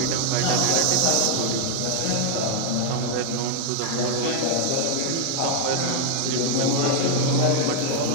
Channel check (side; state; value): both; different; correlation 0.00